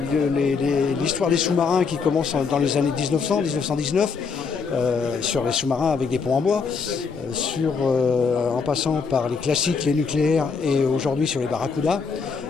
l'histoire des sous-marins qui commence dans les années 1900-1919, sur les sous-marins avec des ponts en bois, en passant par les classiques, les nucléaires et aujourd'hui sur les barracudas,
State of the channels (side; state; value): right; quieter; 5.3 dB